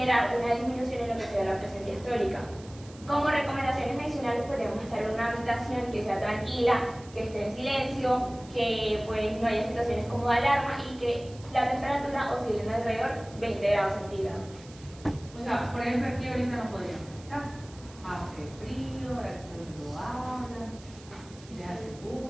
una disminución en lo que sea la presión diastólica. Como recomendaciones adicionales podemos estar en una habitación que sea tranquila, que esté en silencio, que pues no haya situaciones como de alarma y que la temperatura oscile alrededor 20 grados centígrados. O sea, por ejemplo, aquí ahorita no podríamos estar. Hace frío, ahora que todo el mundo habla, le hace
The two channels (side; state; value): right; noise; hiss, 22 dB below the sound